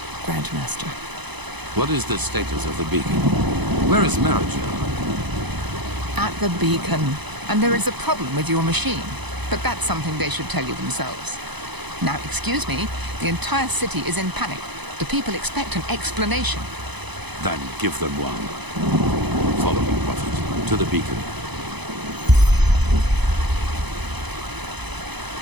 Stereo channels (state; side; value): late; left; 0.99 ms